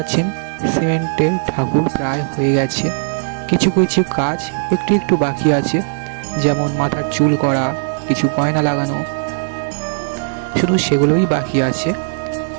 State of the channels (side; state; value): left; silent; digital silence